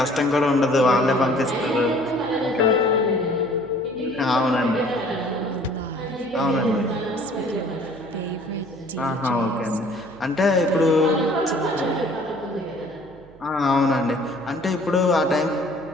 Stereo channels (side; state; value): right; noise; hum, 24 dB below the sound